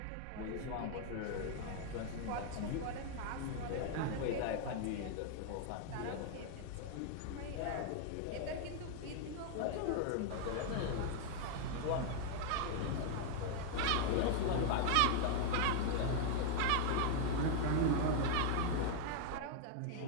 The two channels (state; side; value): different; both; correlation 0.00